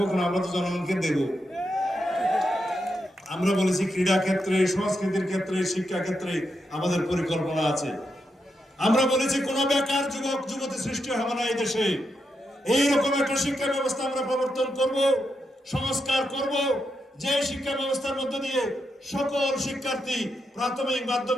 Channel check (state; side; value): normal; both; correlation 0.84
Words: কেন? আমরা তো জনগণকে দেব। আমরা বলেছি ক্রীড়া ক্ষেত্রে, সংস্কৃতির ক্ষেত্রে, শিক্ষা ক্ষেত্রে আমাদের পরিকল্পনা আছে। আমরা বলেছি কোন বেকার যুবক যুবতী সৃষ্টি হবে না এই দেশে। এইরকম একটা শিক্ষা ব্যবস্থা আমরা প্রবর্তন করব, সংস্কার করব, যে শিক্ষা ব্যবস্থার মধ্য দিয়ে সকল শিক্ষার্থী প্রাথমিক,